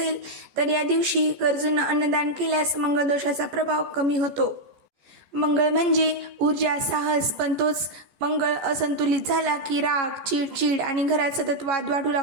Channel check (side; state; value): left; late; 14 ms